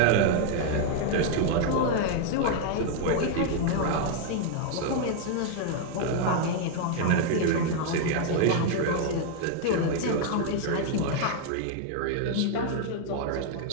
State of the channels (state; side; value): different; both; correlation 0.00